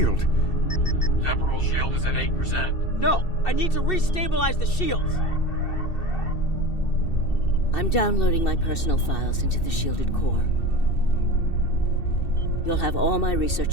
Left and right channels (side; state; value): right; late; 2.7 ms